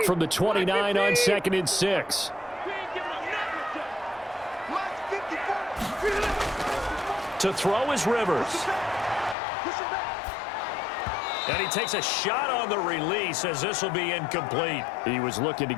from the 29 on 2nd and 6. To throw is Rivers. And he takes a shot on the release as this will be incomplete. He was looking to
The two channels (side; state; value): right; drops out; at 9.3 s